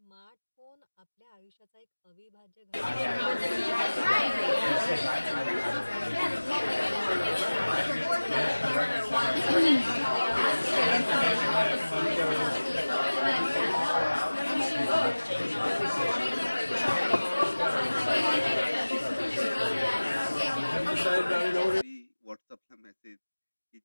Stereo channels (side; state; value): both; inverted; correlation -1.00